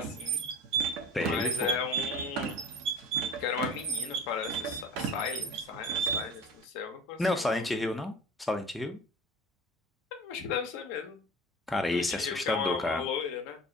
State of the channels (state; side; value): normal; both; correlation 0.37